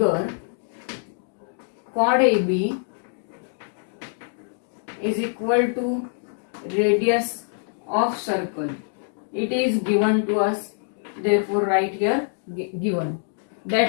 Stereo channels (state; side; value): silent; right; digital silence